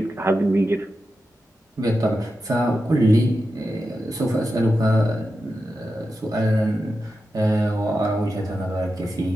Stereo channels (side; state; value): both; normal; correlation 0.90